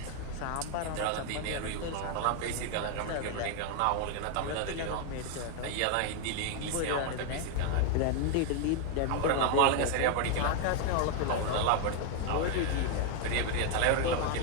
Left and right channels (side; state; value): both; different; correlation 0.00